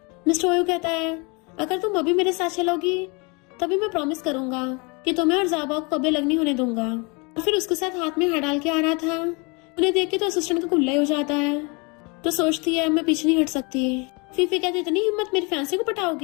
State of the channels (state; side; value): quieter; right; 30.1 dB